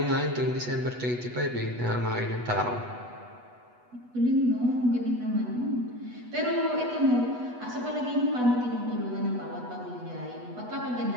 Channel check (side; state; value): left; late; 8.1 ms